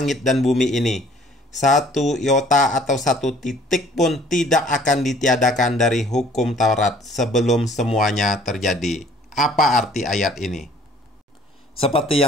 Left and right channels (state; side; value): normal; both; correlation 0.56